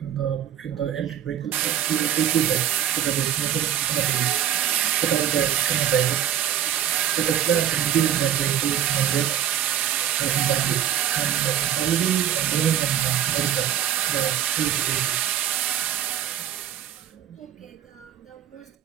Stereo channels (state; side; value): quieter; left; 10.5 dB